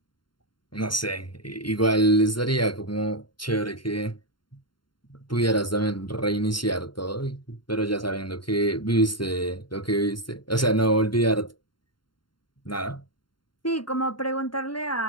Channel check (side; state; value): right; late; 0.72 ms